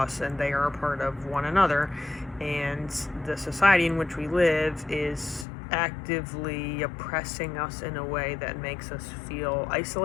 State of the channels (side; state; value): right; drops out; at 5.5 s